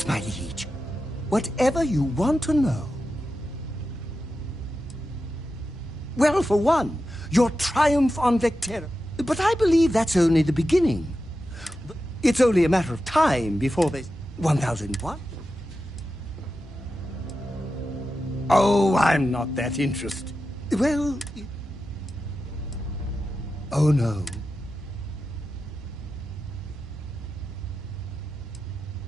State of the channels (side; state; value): both; normal; correlation 0.91